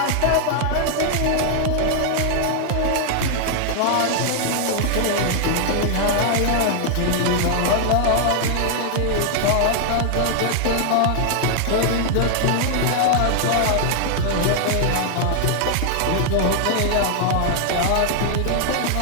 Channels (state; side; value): different; both; correlation -0.01